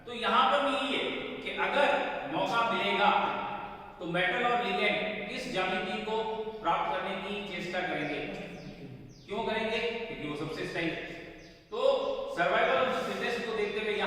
तो यहां पर भी ये कि अगर मौका मिलेगा तो मेटल और लिगेंड इस ज्यामिति को प्राप्त करने की चेष्टा करेंगे। क्यों करेंगे? क्योंकि वो सबसे स्थायी। तो सर्वाइवल ऑफ द फिटेस्ट को देखते हुए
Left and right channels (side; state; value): both; identical; correlation 1.00